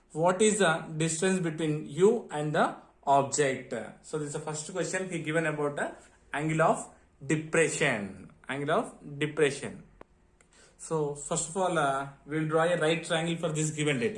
What is the distance between you and the object? So this is the first question he given about the angle of depression. Angle of depression. So first of all, we will draw a right triangle for this given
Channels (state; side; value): identical; both; correlation 1.00